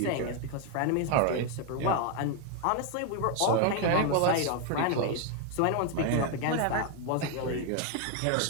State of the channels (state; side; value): different; both; correlation 0.01